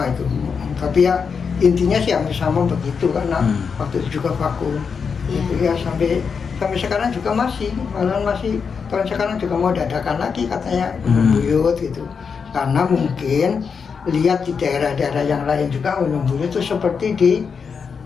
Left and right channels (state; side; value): quieter; right; 5.9 dB